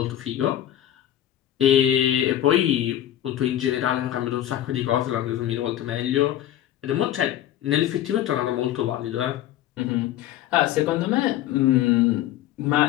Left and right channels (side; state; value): right; quieter; 12.2 dB